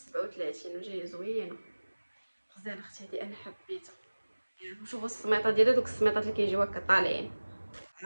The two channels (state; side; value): inverted; both; correlation -1.00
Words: وجايه زوينه، غزاله اختي. هذه انا حبيتها. شوفوا السميطه ديالها، دوك السميطات اللي كيجيو هكا طالعين